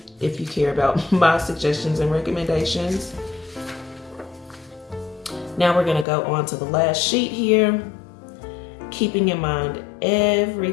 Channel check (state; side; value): drops out; right; at 6.1 s